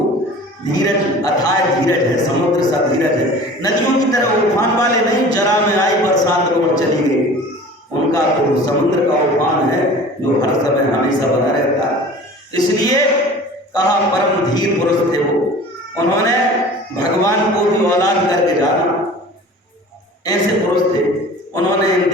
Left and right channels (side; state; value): both; normal; correlation 0.42